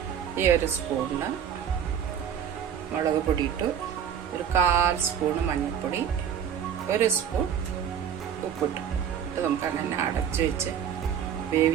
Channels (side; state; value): left; quieter; 8.6 dB